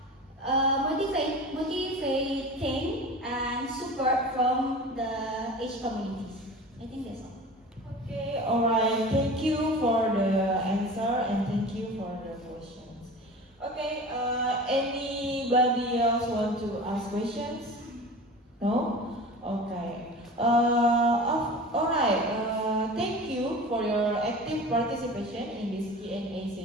motivating and support from the each communities. I think that's all. Okay, alright. Thank you for the answer and thank you for the questions. Okay, anybody else want to ask questions? No? Okay. Alright. Thank you for your active participation in this Q&A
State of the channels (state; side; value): normal; both; correlation 0.36